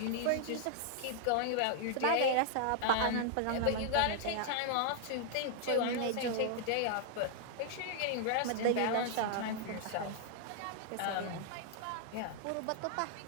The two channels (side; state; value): both; different; correlation -0.01